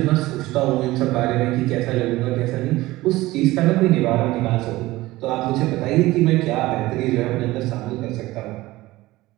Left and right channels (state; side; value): quieter; left; 18.4 dB